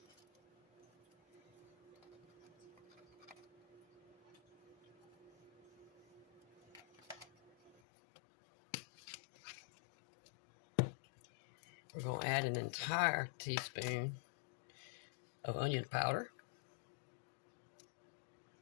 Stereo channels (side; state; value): right; drops out; at 7.8 s